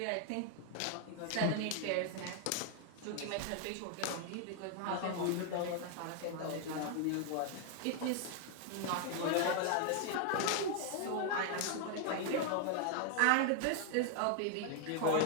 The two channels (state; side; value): different; both; correlation 0.00